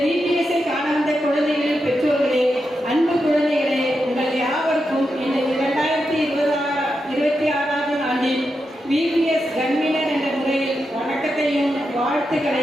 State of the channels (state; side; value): normal; both; correlation 0.87